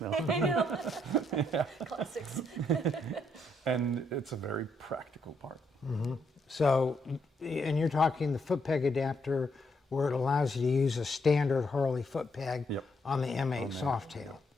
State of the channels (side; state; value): both; normal; correlation 0.75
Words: now. I know. Classics. And it's a very practical part. So, and you're talking the foot peg adapter where it allows you to use a standard Harley foot peg Yep. on the M8 Softail.